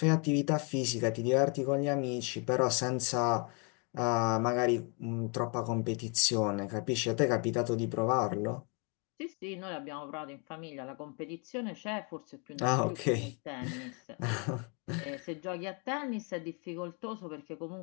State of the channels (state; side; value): quieter; right; 34.3 dB